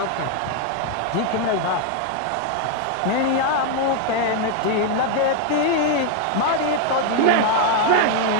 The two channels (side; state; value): both; different; correlation 0.01